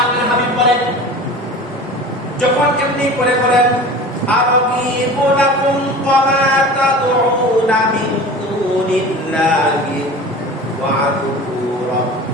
হাবিব বলেন যখন এমনি করে বলেন আরাগীবু লাকুম ওয়া মা তাদউনা মিন দুনিল্লাহি ওয়া আদউ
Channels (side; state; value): both; normal; correlation 0.37